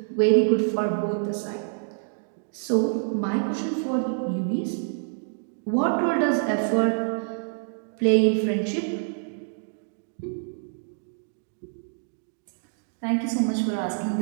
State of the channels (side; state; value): left; silent; digital silence